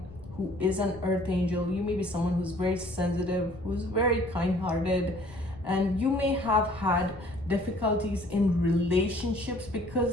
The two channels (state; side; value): noise; left; rumble, 19 dB below the sound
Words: who is an Earth Angel. You may be someone who's very sensitive, who's very kind-hearted, and you may have had difficulties in relationships,